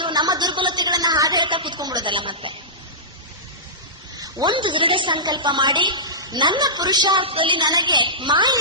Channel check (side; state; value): both; normal; correlation -0.18